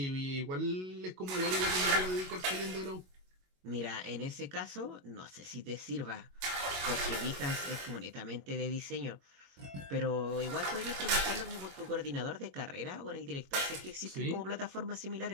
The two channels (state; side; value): late; left; 22 ms